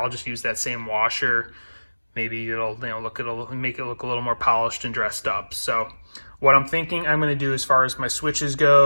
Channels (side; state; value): both; inverted; correlation -1.00